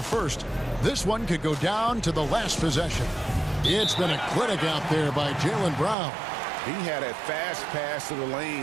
first, this one could go down to the last possession. It's been a clinic out there by Jaylen Brown. He had a fast pass to the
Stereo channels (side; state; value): left; drops out; at 6.0 s